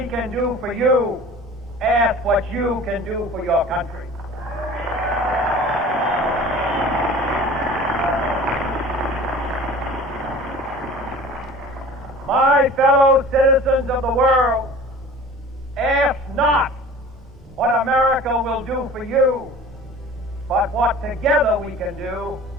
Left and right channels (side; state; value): both; normal; correlation 0.43